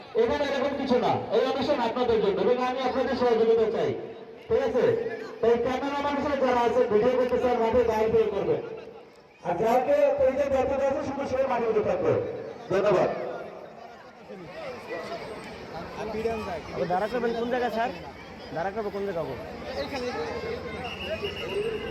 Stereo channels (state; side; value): identical; both; correlation 1.00